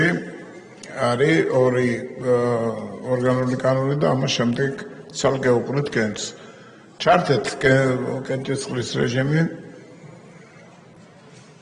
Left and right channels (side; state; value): both; identical; correlation 1.00